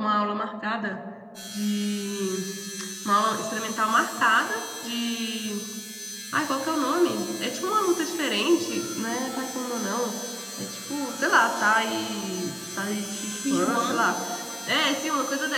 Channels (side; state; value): both; identical; correlation 1.00